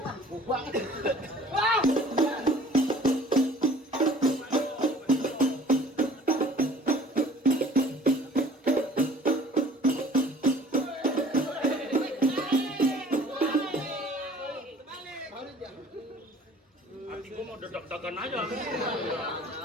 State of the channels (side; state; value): both; normal; correlation 0.51